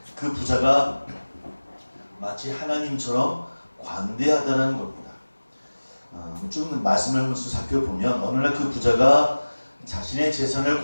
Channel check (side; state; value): both; inverted; correlation -1.00